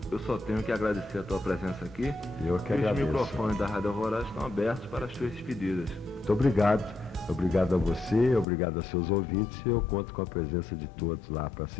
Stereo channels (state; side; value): drops out; right; at 8.5 s